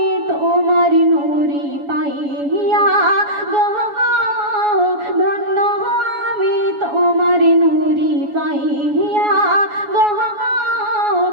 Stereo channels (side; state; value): left; late; 7.1 ms